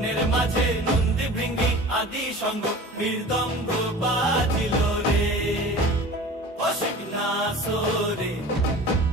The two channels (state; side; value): normal; both; correlation 0.40